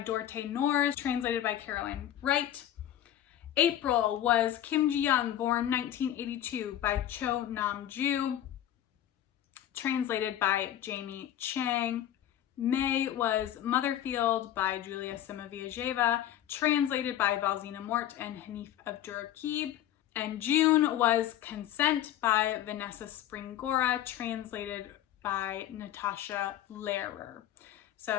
Dorte Noors, translated by Caroline Wright. April was Kim Ji-young, Born 1982 by Cho Nam-ju, translated by Jamie Chang. May was Motherfield by Julia Simoviajeva, translated by Valzina Mort and Hanif Abdurraqib. And June was Consent by Vanessa Springora, translated by Natasha Lehrer.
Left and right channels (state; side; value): quieter; right; 11.8 dB